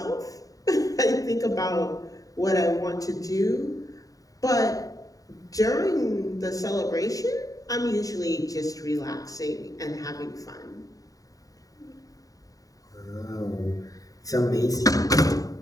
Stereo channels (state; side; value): late; right; 0.17 ms